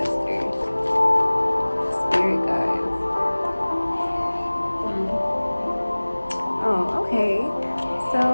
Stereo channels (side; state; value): both; inverted; correlation -1.00